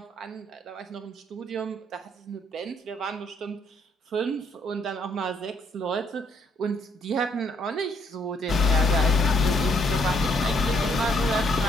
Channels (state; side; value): normal; both; correlation 0.69